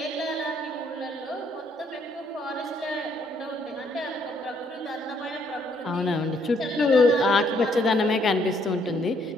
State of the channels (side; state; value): both; normal; correlation 0.69